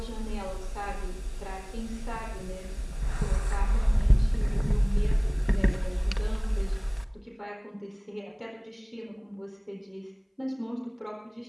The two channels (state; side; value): identical; both; correlation 1.00